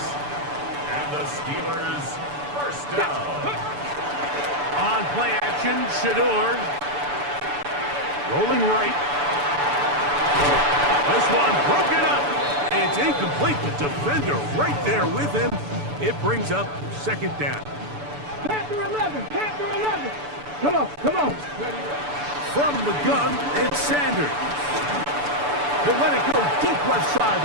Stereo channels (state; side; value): late; left; 6.9 ms